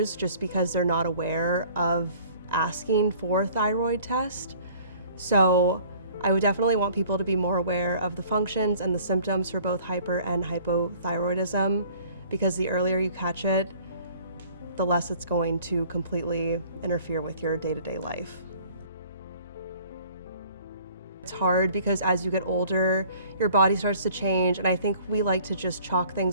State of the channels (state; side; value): inverted; both; correlation -0.53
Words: just because they're not aware of asking for a thyroid test. So I would definitely want people to be more aware of the functions and the symptoms for both hyper and hypothyroidism, because the earlier you catch it, the less it's going to completely interfere with your day-to-day life. It's hard because as you get older, your body starts to change, and I think we like to just chalk